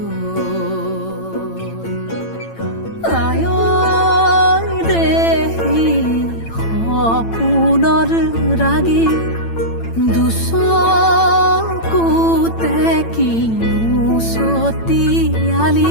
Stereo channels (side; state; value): right; late; 8.9 ms